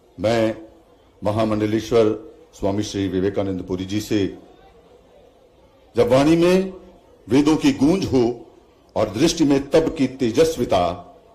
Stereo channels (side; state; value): both; identical; correlation 1.00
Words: मैं महामंडलेश्वर स्वामी श्री विवेकानंदपुरी जी से, जब वाणी में वेदों की गूंज हो और दृष्टि में तब की तेजस्विता,